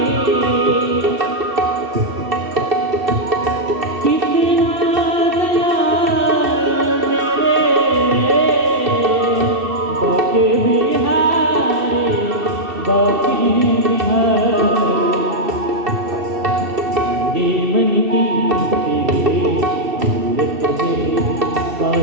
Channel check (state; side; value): late; left; 2.7 ms